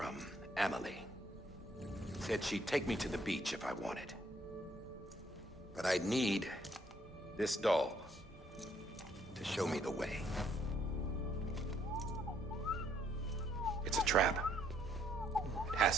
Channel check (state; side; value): normal; both; correlation 0.67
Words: Emily. Said she'd take me to the beach if I wanted. But I'd need this doll to show me the way. It's a trap. It